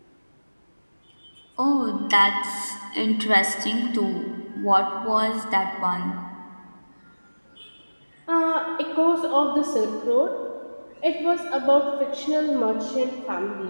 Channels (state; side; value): inverted; both; correlation -1.00